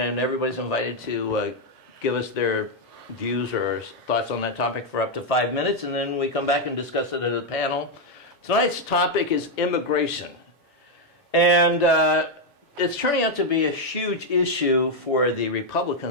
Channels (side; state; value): both; normal; correlation 0.01